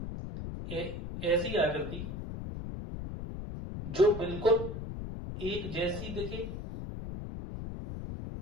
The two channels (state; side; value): noise; left; rumble, 7 dB below the sound